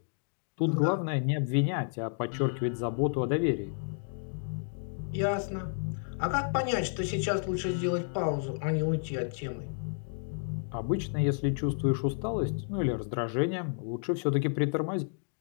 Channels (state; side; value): silent; right; digital silence